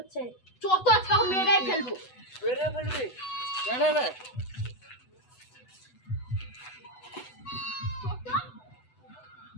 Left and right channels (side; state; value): right; late; 8.0 ms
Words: যত আজকে মেয়েরাই ফেলবো। বেড়ে ফেলবি রে